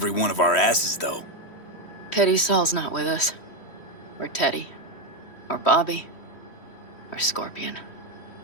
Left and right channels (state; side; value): late; right; 3.1 ms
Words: one of our asses, though. Pity Saul's not with us. Or Teddy. Or Bobby. Or Scorpion.